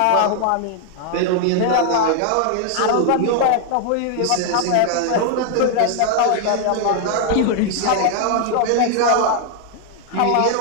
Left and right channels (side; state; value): both; different; correlation 0.00